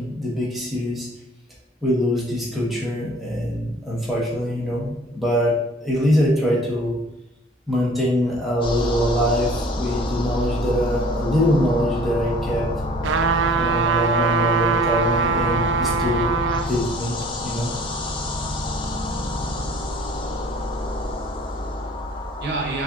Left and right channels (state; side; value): normal; both; correlation 0.51